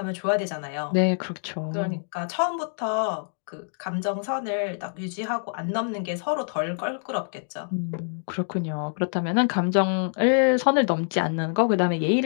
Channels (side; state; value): right; silent; digital silence